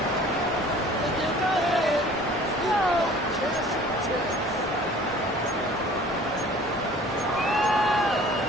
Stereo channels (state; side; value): normal; both; correlation 0.48